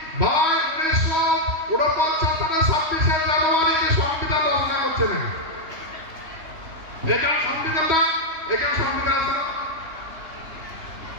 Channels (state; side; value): late; left; 3.1 ms